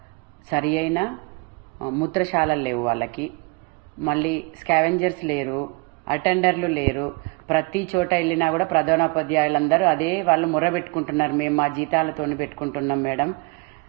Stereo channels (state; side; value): quieter; left; 30.4 dB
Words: సరి అయిన మూత్రశాలలు లేవు వాళ్ళకి. మళ్ళీ స్కావెంజర్స్ లేరు, అటెండర్లు లేరు. ప్రతి చోట వెళ్ళినా కూడా ప్రధానోపాధ్యాయులందరూ అదే వాళ్ళు మొర్ర పెట్టుకుంటున్నారు. మేము మా జీతాలతోని పెట్టుకుంటున్నాం మేడం,